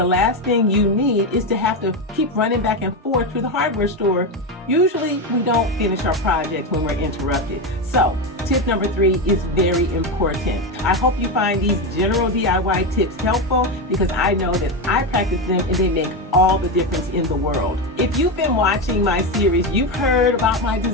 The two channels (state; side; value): normal; both; correlation 0.13